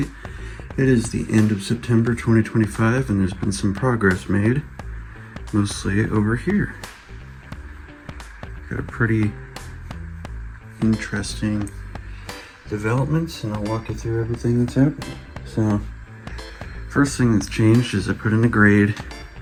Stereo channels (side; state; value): both; identical; correlation 1.00